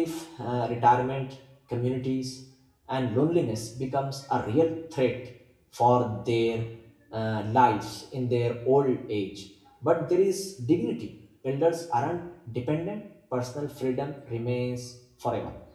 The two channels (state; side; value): identical; both; correlation 1.00